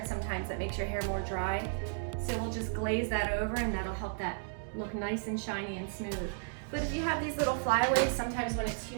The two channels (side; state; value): left; silent; digital silence